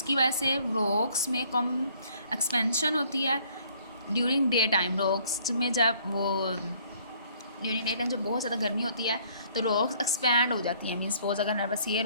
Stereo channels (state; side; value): inverted; both; correlation -0.61